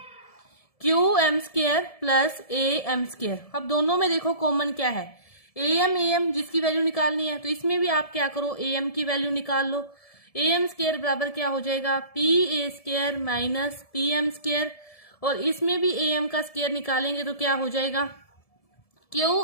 QM square plus AM square. अब दोनों में देखो कॉमन क्या है, AM जिसकी वैल्यू निकालनी है। तो इसमें भी आप क्या करो, AM की वैल्यू निकाल लो। AM स्क्वायर बराबर क्या हो जाएगा, PA square minus PM square. और इसमें भी AM का स्क्वायर निकालेंगे तो क्या हो जाएगा,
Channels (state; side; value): late; right; 1.7 ms